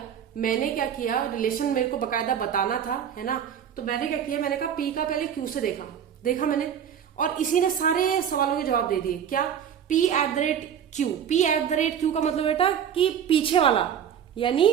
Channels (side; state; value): left; quieter; 8.7 dB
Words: किया, रिलेशन मेरे को बकायदा बताना था, है ना, तो मैंने क्या किया, मैंने कहा पी का पहले क्यू से देखा मैंने, और इसी ने सारे सवालों के जवाब दे दिए। क्या, P at the rate Q, P at the rate Q का मतलब बेटा कि पीछे वाला, यानी